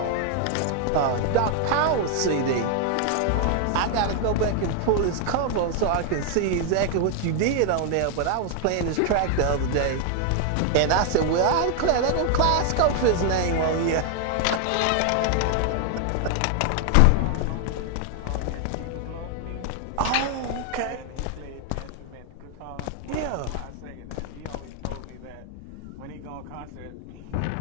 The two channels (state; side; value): different; both; correlation 0.00